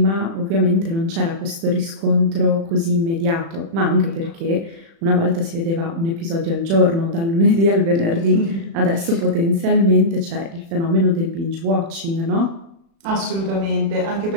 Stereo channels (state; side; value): late; left; 36 ms